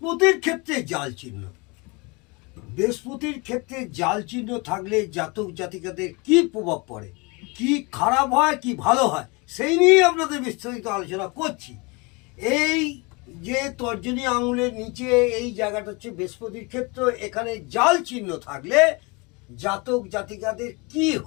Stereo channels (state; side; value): quieter; right; 28.1 dB